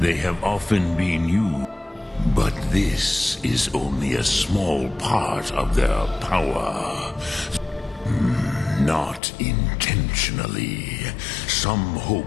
they have often been used. But this is only a small part of their power. Not intentionally. Some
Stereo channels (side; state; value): right; drops out; at 9.2 s